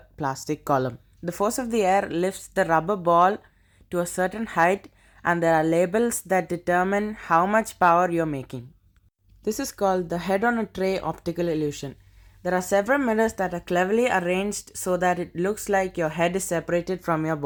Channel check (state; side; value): identical; both; correlation 1.00